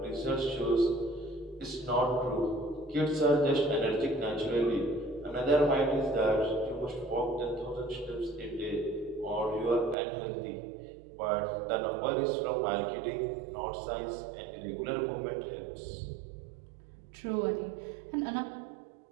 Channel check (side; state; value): left; drops out; at 10.0 s